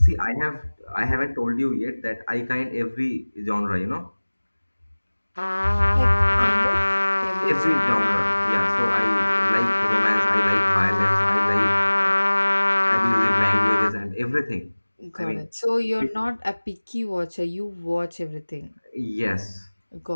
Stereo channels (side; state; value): both; inverted; correlation -1.00